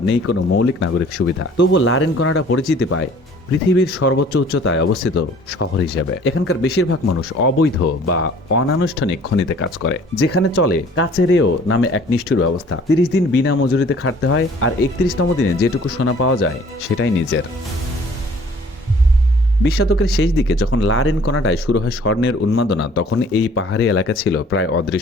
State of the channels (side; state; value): both; normal; correlation 0.53